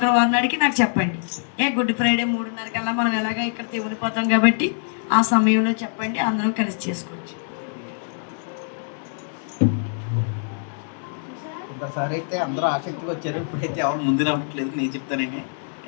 నాడికి నాకు చెప్పండి. గుడ్ ఫ్రైడే 3:30 కల్లా మనం ఎలాగా ఇక్కడ ఉండిపోతాం కాబట్టి ఆ సమయంలో చెప్పండి, అందరం కలిసి చేసుకోవచ్చు. ఒకసారి అయితే అందరూ ఆసక్తిగా వచ్చారు, ఇప్పుడైతే ఎవరు ముందు రావట్లేదు. నేను చెప్తానండి,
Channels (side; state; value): right; silent; 62 dB below the other